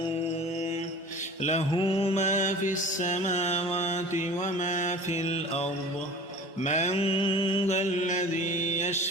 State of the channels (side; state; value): both; normal; correlation 0.41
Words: له ما في السماوات وما في الأرض من ذا الذي